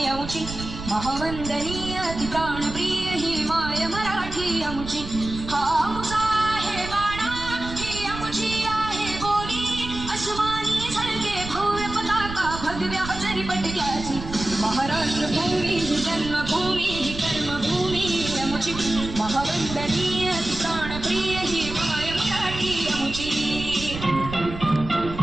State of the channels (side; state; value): right; noise; rumble, 10 dB below the sound